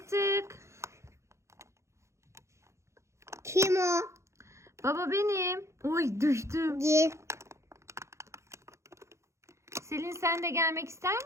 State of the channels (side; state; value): left; late; 0.14 ms